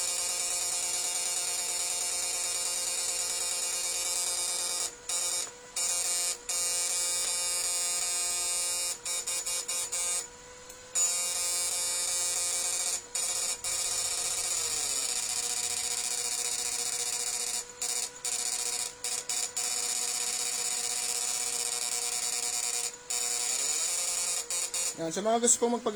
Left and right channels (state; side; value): identical; both; correlation 1.00